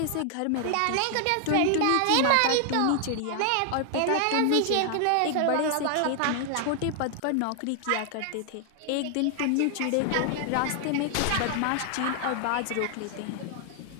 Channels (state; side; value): different; both; correlation 0.00